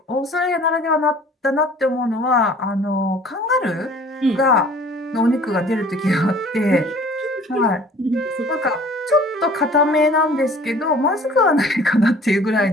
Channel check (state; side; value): normal; both; correlation 0.50